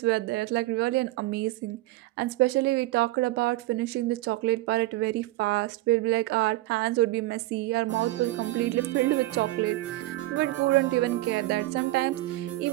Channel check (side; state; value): left; quieter; 18.1 dB